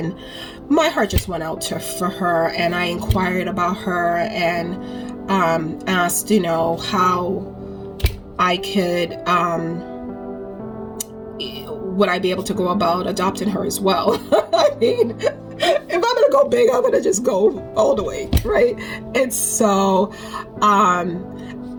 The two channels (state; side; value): identical; both; correlation 1.00